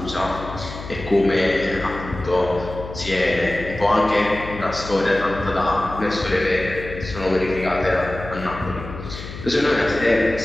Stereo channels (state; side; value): noise; left; hum, 11 dB below the sound